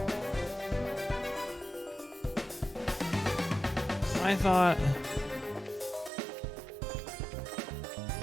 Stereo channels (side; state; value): left; drops out; at 6.1 s